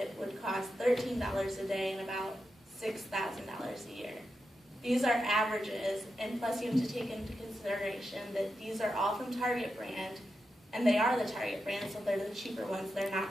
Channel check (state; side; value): normal; both; correlation 0.88